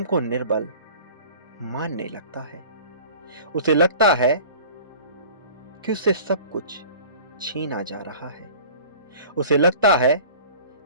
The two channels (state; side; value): inverted; both; correlation -0.43